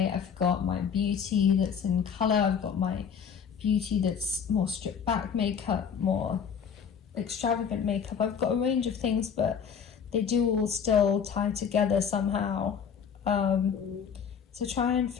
I've got my beauty that's in colour, I've got my beauty that's more stripped back makeup, more extravagant makeup. I've got a range of things, but they do all still tie together somehow. So try and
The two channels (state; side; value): quieter; right; 7.1 dB